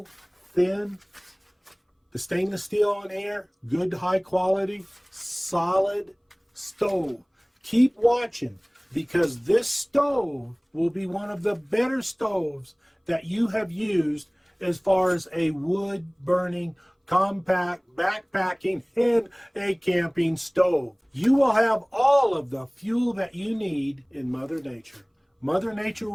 thin? The stainless steel on here, good high quality, solid stove. Keep watching, because this stove will be one of the better stoves that you have used as far as a wood burning, compact, backpacking, and a camping stove. You will have all of the fuel that you need in Mother Nature. Mother Nature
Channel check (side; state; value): both; identical; correlation 1.00